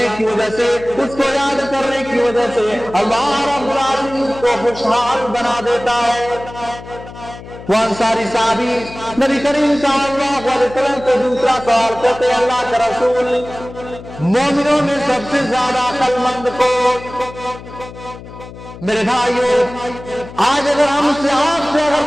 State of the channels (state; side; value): noise; left; hum, 15 dB below the sound